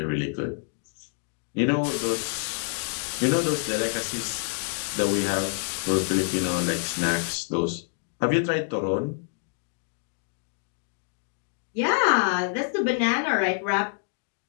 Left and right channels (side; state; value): right; silent; 60 dB below the other